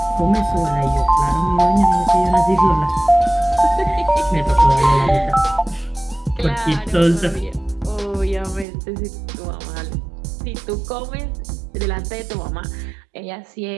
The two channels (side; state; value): left; drops out; at 8.7 s